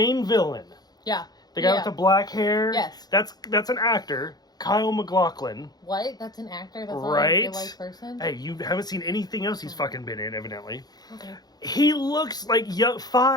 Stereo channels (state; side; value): late; right; 0.19 ms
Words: villain. Yeah. The guy with the black hair. Yes. That's an actor. Kyle MacLachlan. What? That's an actor? That's not right? a real-life person? Hey, you haven't seen anything else he's fucking been in, evidently. Okay. He looks like